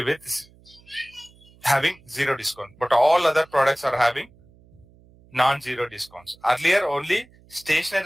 with having 0 discount, but all other products are having non-zero discounts. Earlier only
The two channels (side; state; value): right; noise; hum, 28 dB below the sound